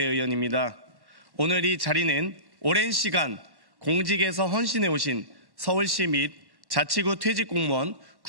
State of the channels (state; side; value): late; left; 1.1 ms